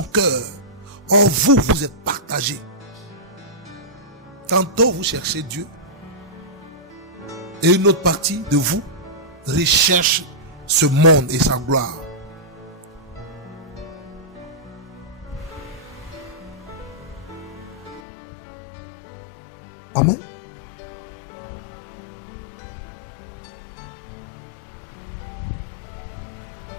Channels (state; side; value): drops out; right; at 18.0 s